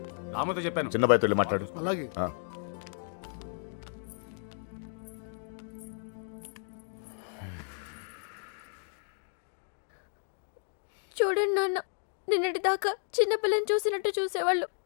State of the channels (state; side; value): silent; right; 56 dB below the other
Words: రామతో చెప్పాను. చిన్న బాయ్తో వెళ్ళి మాట్లాడు. అలాగే. చూడండి నాన్న, నిన్నటి దాకా చిన్నపిల్లని చూసినట్టు చూసేవాళ్ళు